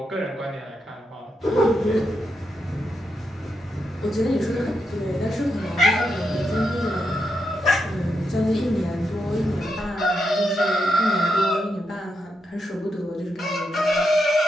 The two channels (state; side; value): normal; both; correlation 0.83